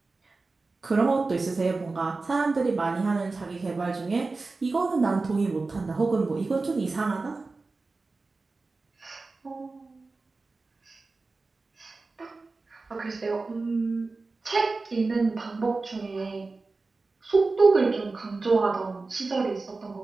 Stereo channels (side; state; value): left; quieter; 3.7 dB